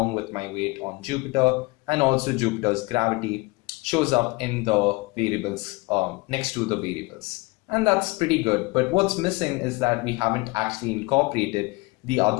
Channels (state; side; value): quieter; right; 24.6 dB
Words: with my weight on Jupiter, and also Jupiter's gravity shows up in the variables next to the variables. And that's pretty good, but what's missing is that we haven't actually incorporated the